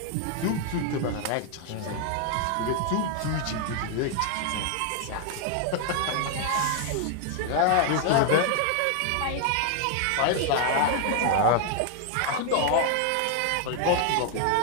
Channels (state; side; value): different; both; correlation 0.00